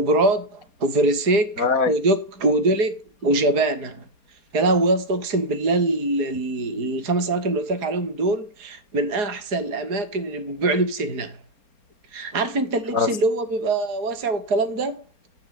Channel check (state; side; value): late; left; 4.3 ms